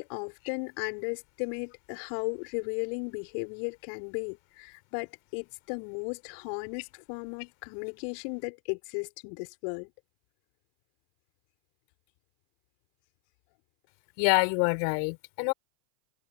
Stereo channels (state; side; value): silent; right; 55 dB below the other